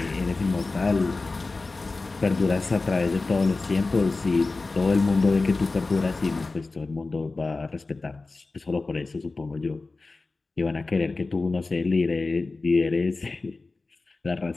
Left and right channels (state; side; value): quieter; right; 3.6 dB